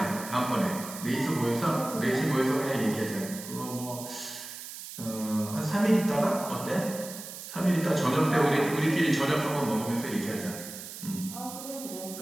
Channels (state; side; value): noise; right; hiss, 11 dB below the sound